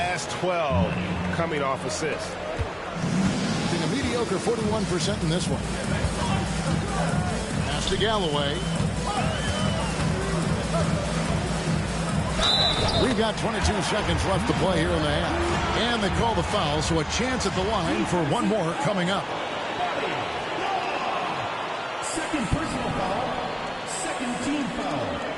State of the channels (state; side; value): identical; both; correlation 1.00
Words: 12 coming off assists. A mediocre 41% in this one. Pass to Galloway. We've got 22 seconds left to play here in the half. And they call the foul, so a chance at the line for one more coming up. Second personal foul. Second team foul.